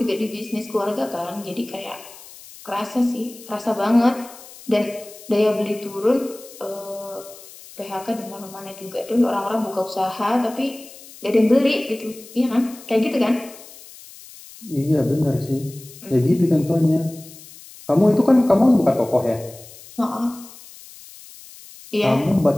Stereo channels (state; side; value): noise; left; hiss, 19 dB below the sound